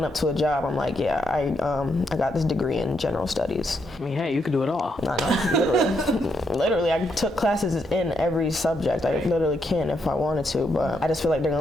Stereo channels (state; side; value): normal; both; correlation 0.78